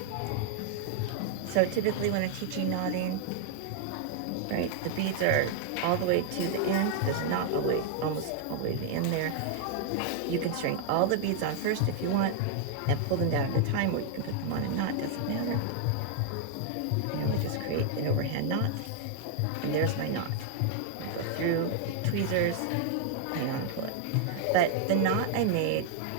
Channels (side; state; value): both; different; correlation 0.00